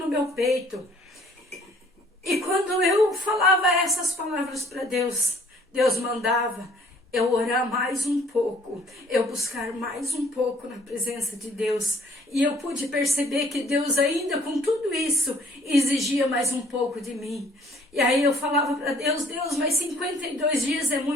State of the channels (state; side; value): normal; both; correlation 0.58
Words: meu peito. E quando eu falava essas palavras para Deus, Deus mandava eu orar mais um pouco, eu buscar mais um pouco na presença de Deus. E eu pude perceber que Deus ainda com tudo isso exigia mais um pouco de mim. E aí eu falava para Deus, Deus, mas 52 dias é